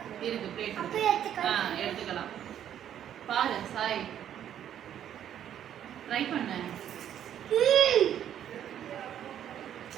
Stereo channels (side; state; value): left; quieter; 10.2 dB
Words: இருக்கு பிளேட். எடுத்துக்கலாம். பாரு சாய், ட்ரை பண்ண.